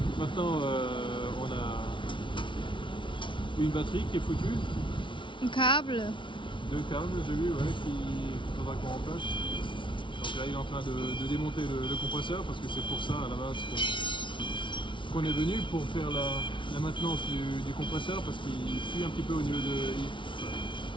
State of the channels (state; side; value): late; right; 0.24 ms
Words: Maintenant, on a une batterie qui est foutue. Un câble. 2 câbles, j'ai vu, ouais, qu'il faudra qu'on remplace. Donc là, il est en train de démonter le compresseur parce que c'est pour ça à la base qu'on est venu pour faire la maintenance du compresseur parce qu'il fuit un petit peu au niveau de.